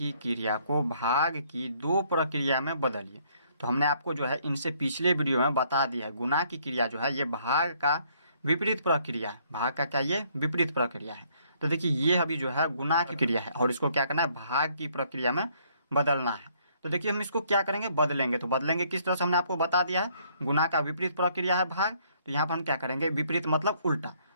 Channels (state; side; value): inverted; both; correlation -0.66